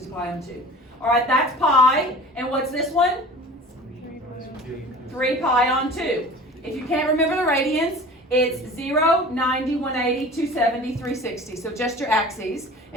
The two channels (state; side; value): normal; both; correlation 0.40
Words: pi on 2. All right, that's pi. And what's this one? 3 pi on 2. If you can't remember the radians, it's 0, 90, 180, 270, 360. So just your axes.